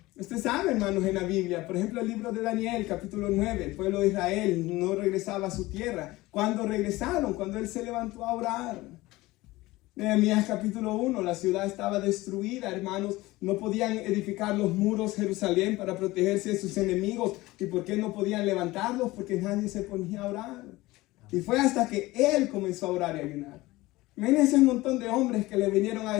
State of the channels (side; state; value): right; quieter; 19.4 dB